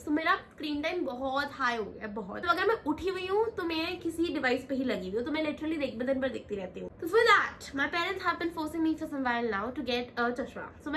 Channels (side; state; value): both; identical; correlation 1.00